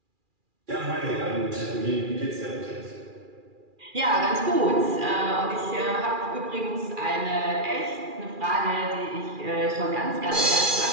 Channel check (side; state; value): left; late; 2.4 ms